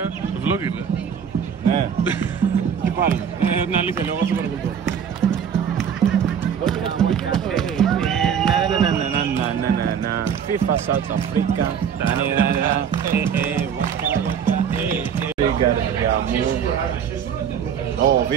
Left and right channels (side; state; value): left; quieter; 7.8 dB